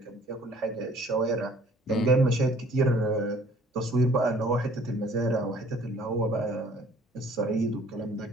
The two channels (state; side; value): normal; both; correlation 0.55